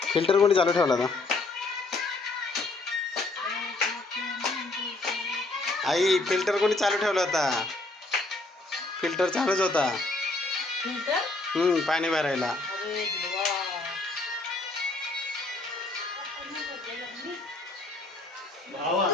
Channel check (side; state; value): right; quieter; 3.1 dB